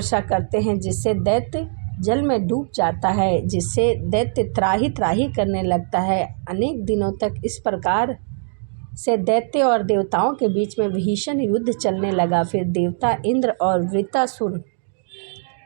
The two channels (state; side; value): silent; left; digital silence